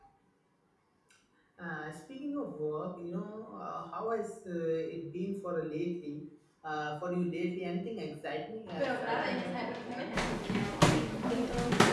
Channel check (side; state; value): both; identical; correlation 1.00